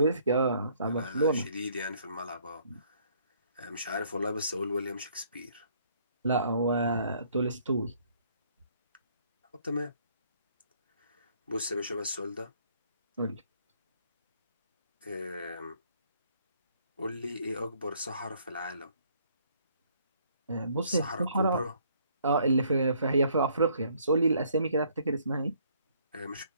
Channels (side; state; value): both; inverted; correlation -0.64